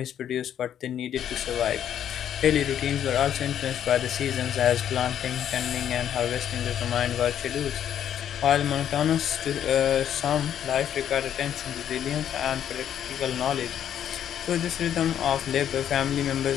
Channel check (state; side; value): quieter; right; 9.9 dB